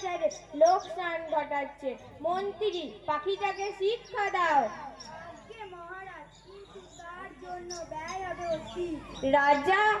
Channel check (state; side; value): identical; both; correlation 1.00